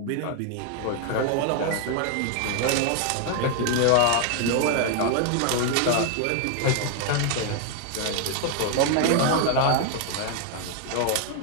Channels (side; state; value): both; different; correlation 0.00